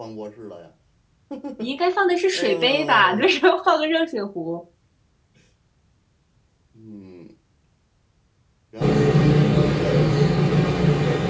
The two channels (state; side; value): identical; both; correlation 1.00